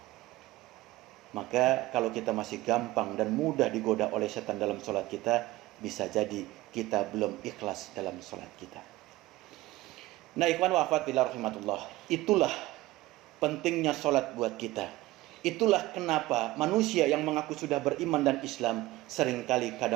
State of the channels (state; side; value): quieter; left; 18.2 dB